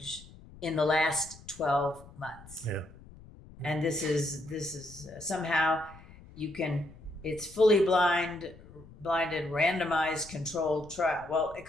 in the last 12 months. Yeah. And this is somehow it's fully blinded, randomized, controlled trial. Well, it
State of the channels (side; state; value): left; noise; rumble, 20 dB below the sound